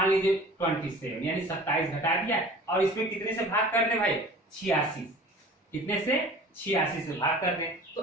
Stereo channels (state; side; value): normal; both; correlation 0.43